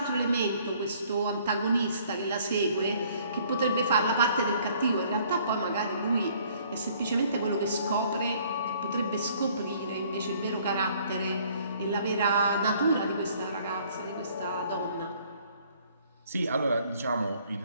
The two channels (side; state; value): both; inverted; correlation -0.59